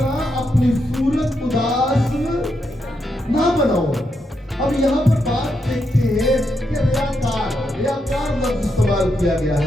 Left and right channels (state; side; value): normal; both; correlation 0.82